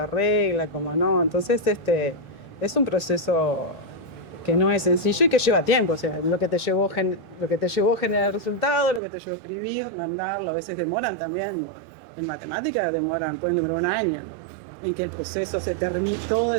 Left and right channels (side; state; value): left; drops out; at 9.0 s